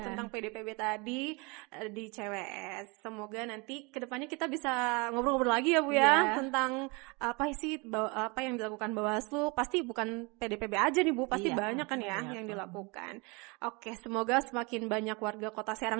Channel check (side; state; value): left; quieter; 28.6 dB